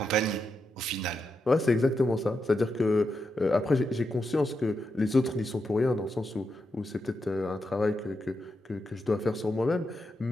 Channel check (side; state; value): both; normal; correlation 0.85